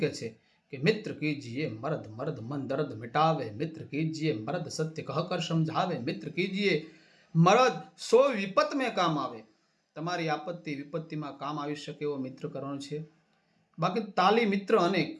કહે છે કે મિત્ર કીજીએ મર્દ મર્દ મન દર્દ મિટાવે, મિત્ર કીજીએ મર્દ સત્ય કહ કર સમझावे, મિત્ર કીજીએ મર્દ સો વિપત મેં કામ આવે. તમારી આપત્તિ વિપત્તિમાં કામ આવી શકે એવો મિત્ર કરવાનો છે. બાકી તાલી મિત્ર અનેક,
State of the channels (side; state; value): both; identical; correlation 1.00